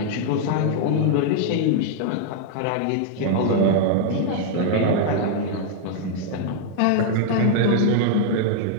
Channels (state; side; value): different; both; correlation -0.01